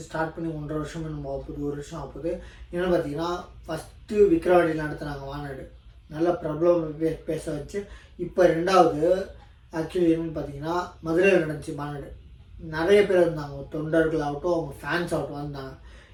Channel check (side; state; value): both; identical; correlation 1.00